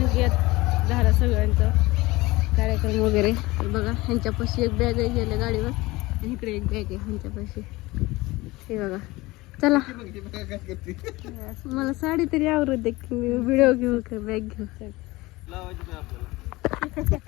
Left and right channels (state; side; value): quieter; right; 20.8 dB